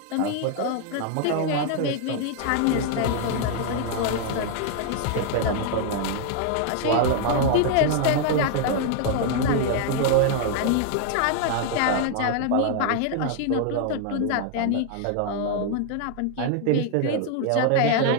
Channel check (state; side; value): different; both; correlation 0.00